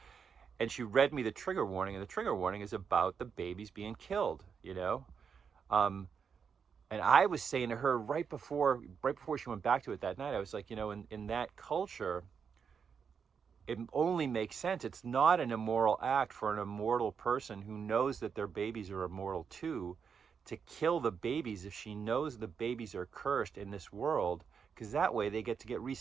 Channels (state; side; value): quieter; left; 6.5 dB